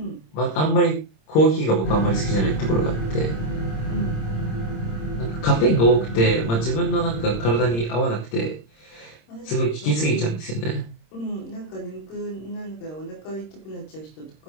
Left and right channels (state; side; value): late; right; 26 ms